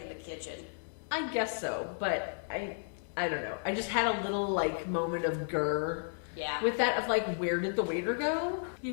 the kitchen. I guess so, but I don't know. I just had a little like moment of grr Yeah. with that of like, where did the waiter go? You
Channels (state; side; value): silent; right; digital silence